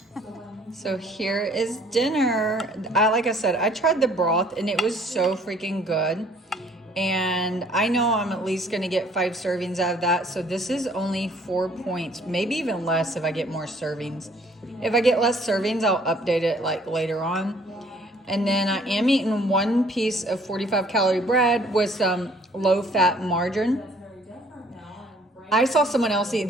So here is dinner. Like I said, I tried the broth and it was so freaking good. And I know I'm at least going to get 5 servings out of that. So this is only 4 points, maybe even less if I get more servings. If I get less servings, I'll update it like later on. And then I am eating 1 piece of 45 calorie bread with some low fat margarine. I saw someone else eat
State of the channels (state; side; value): normal; both; correlation 0.58